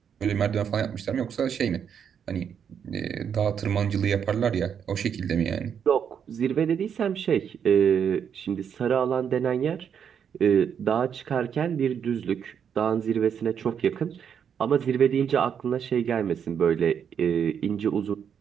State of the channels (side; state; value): left; quieter; 7.8 dB